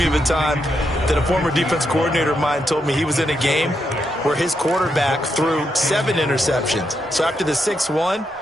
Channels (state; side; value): normal; both; correlation 0.82